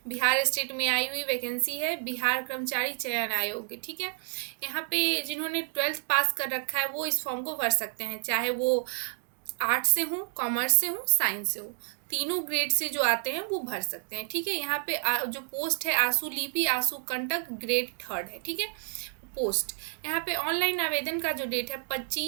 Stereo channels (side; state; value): left; silent; digital silence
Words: बिहार स्टेट में आई हुई वैकेंसी है, बिहार कर्मचारी चयन आयोग, ठीक है। यहाँ पे जिन्होंने 12th पास कर रखा है वो इस फॉर्म को भर सकते हैं, चाहे वो आर्ट्स से हो, कॉमर्स से हो, साइंस से हो। तीनों ग्रेड से जो आते हैं वो भर सकते हैं, ठीक है। यहाँ पे जो पोस्ट है आंसू लिपि आंसू कंटक ग्रेड 3rd है, ठीक है। पोस्ट यहाँ पे ऑनलाइन आवेदन का जो डेट है